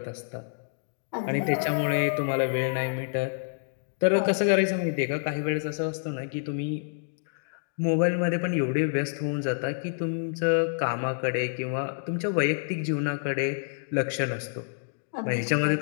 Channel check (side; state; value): right; silent; digital silence